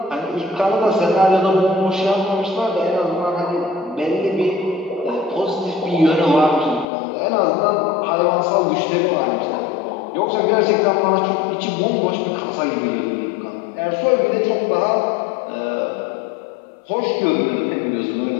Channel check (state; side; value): drops out; right; at 6.9 s